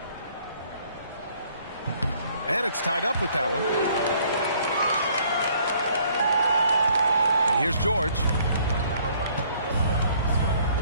And it's tied up with that one. And here's George.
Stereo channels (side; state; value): both; inverted; correlation -0.61